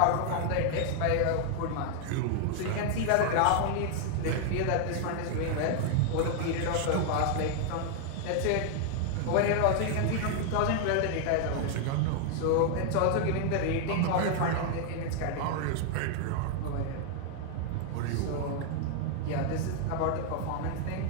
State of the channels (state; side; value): different; both; correlation 0.00